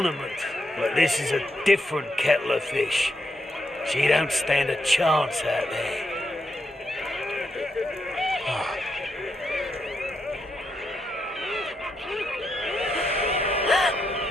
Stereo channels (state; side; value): normal; both; correlation 0.81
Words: but this is a different kettle of fish. She don't stand a chance out there.